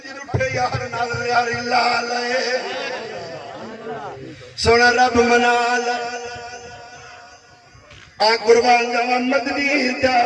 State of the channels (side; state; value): both; identical; correlation 1.00